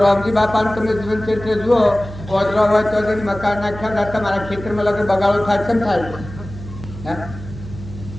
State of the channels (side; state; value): right; noise; hum, 13 dB below the sound